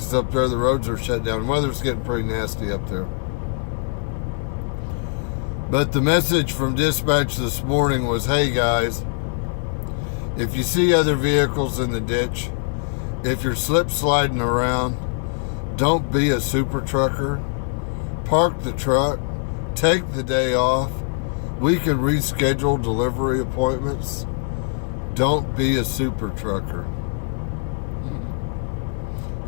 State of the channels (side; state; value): right; silent; 61 dB below the other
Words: up there the roads are shut down. The weather's getting pretty nasty up there. But the message from dispatch this morning was, hey guys, if you see other vehicles in the ditch, if you're slip sliding around, don't be a super trucker. Park the truck, take the day off. We can reschedule delivery appointments. Don't be a super trucker.